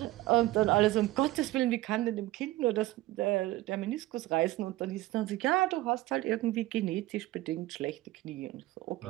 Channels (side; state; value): left; quieter; 17.6 dB